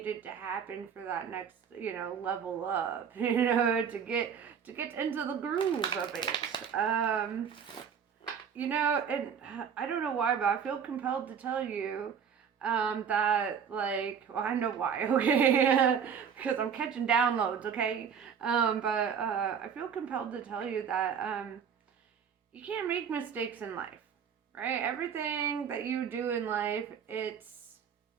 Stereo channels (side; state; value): left; quieter; 7.3 dB